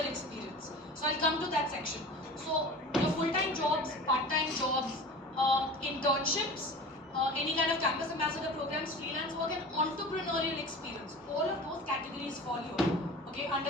experience. So I'll come to that section. So your full-time jobs, part-time jobs, internships, any kind of campus ambassador programs, freelance work and entrepreneurial experience. All of those categories fall here, okay, under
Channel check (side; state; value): both; normal; correlation 0.37